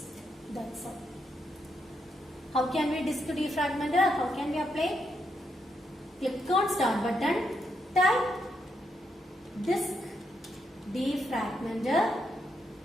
That's all. How can we disk defragmenter? How can we apply? Click on start button, type disk defragmenter,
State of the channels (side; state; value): both; normal; correlation 0.80